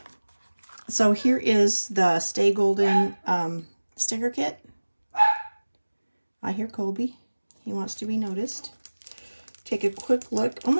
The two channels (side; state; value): both; inverted; correlation -1.00